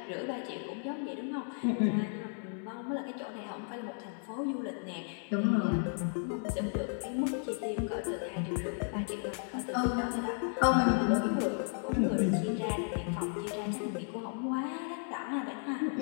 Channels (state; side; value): silent; right; 55 dB below the other